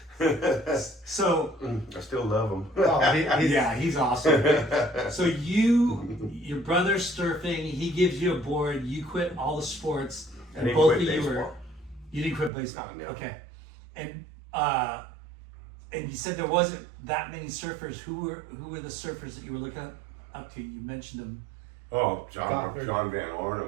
So, I still love him. Oh, yeah, he's awesome. So your brother's surfing, he gives you a board, you quit all the sports, I and didn't both quit of you were, baseball. you didn't quit baseball. No. Okay. And you said there wasn't that many surfers. Who were the surfers that you were looking up to? You mentioned them. Oh, John Gothard. Van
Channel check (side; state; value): left; drops out; at 12.5 s